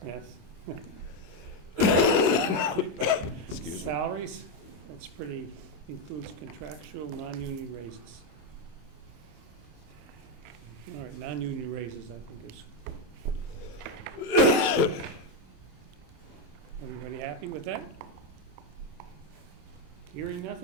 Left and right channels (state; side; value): late; left; 26 ms